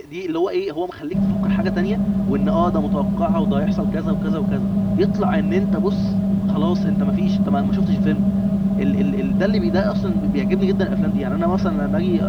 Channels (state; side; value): identical; both; correlation 1.00